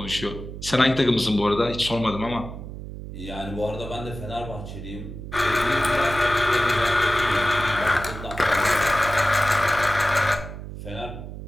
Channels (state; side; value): noise; right; hum, 10 dB below the sound